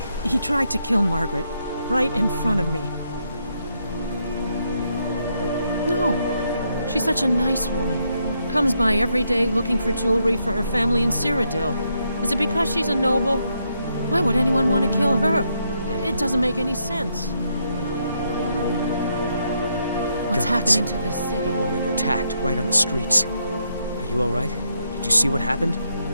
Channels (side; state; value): both; inverted; correlation -0.77